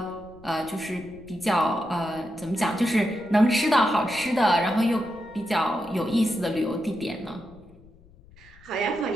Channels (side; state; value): left; noise; rumble, 25 dB below the sound